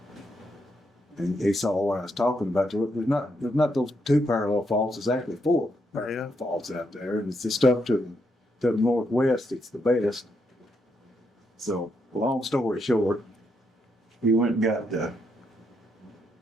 And he saw what I was talking about. There's not those 2 parallel faults, there's actually 4 parallel faults out there. And it's the stuff to the northwest, it's the best. So, long story short, he went and got,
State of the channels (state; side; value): normal; both; correlation 0.79